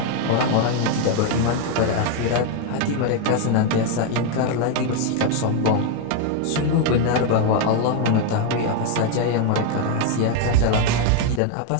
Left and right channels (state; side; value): different; both; correlation 0.01